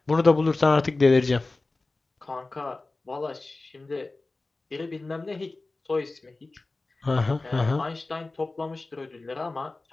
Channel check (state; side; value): quieter; right; 3.3 dB